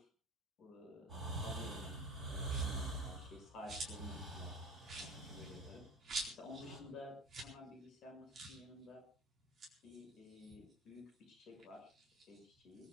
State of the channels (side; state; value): both; normal; correlation 0.35